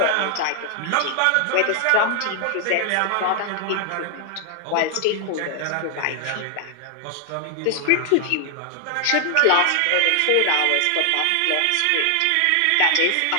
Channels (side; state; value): both; different; correlation 0.00